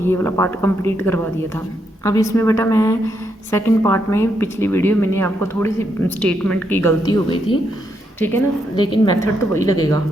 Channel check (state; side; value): normal; both; correlation 0.79